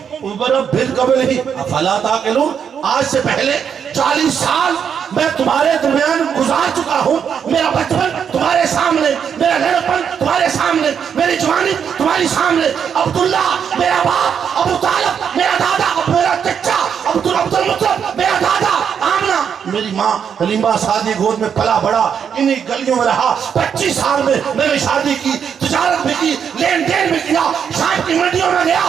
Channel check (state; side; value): quieter; left; 7.5 dB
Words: عُمُرًا مِّن قَبْلِهِ أَفَلَا تَعْقِلُونَ. آج سے پہلے 40 سال میں تمہارے درمیان گزار چکا ہوں. میرا بچپن تمہارے سامنے، میرا لڑکپن تمہارے سامنے، میری جوانی تمہاری سامنے. عبداللہ میرا باپ، ابو طالب میرا دادا، میرا چچا عبد المطلب میرا دادا، آمنہ میری ماں، حلیمہ سعدی گود میں پلا بڑا، انہی گلیوں میں رہا. 25 سال میں میں نے شادی کی، تجارت بھی کی، لین دین بھی کیا، شام کی منڈیوں میں گیا،